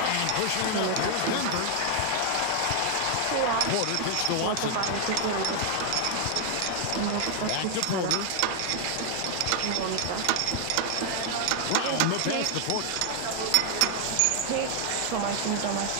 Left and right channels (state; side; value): different; both; correlation 0.00